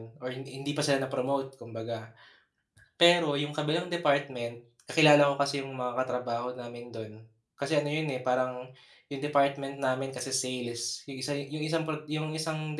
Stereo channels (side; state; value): both; identical; correlation 1.00